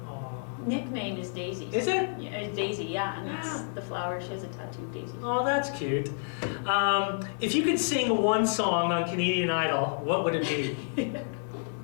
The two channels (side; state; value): right; silent; 58 dB below the other